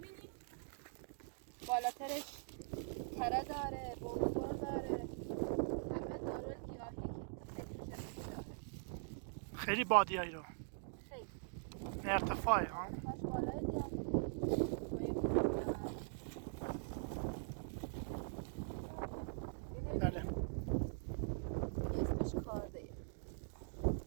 بالاترش تره داره، بوزور داره، همه داره گیاهی که فکر داره. خیلی بادیایی رو خیلی ارتفاعی ها. کاش بالای دیگه بله اسمش کارده.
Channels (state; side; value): silent; left; digital silence